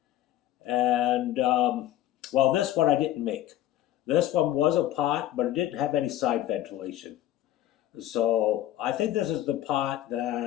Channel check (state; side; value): quieter; right; 13.2 dB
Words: And well, this one I didn't make. This one was a pot, but it didn't have any side ventilation. So I think this is the pot